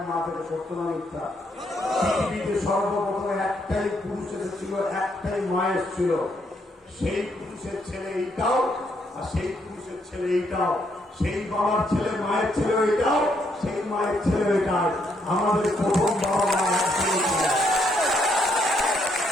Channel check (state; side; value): normal; both; correlation 0.74